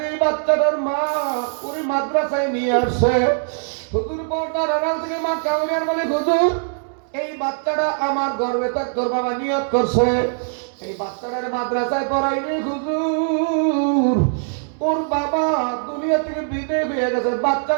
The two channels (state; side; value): silent; left; digital silence